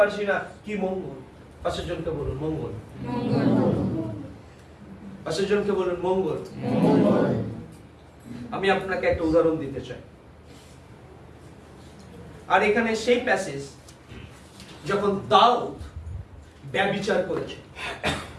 না কি মঙ্গল। পাশের জনকে বলুন মঙ্গল। পাশের জনকে বলুন মঙ্গল। আমি আপনাকে একটা উদাহরণ দিতে চাই। আর এখানে সেই প্যাসেজ যখন দাউদ ব্যভিচার করেছে,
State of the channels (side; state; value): both; identical; correlation 1.00